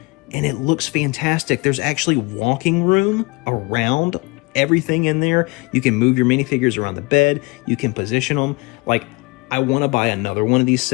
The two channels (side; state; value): right; quieter; 25.9 dB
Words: and it looks fantastic. There's actually walking room around everything in there. You can move your minifigures around the bed. You can position them. Like, I want to buy another one of these